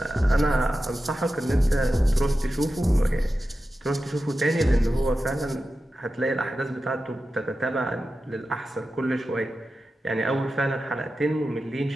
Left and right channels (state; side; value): normal; both; correlation 0.92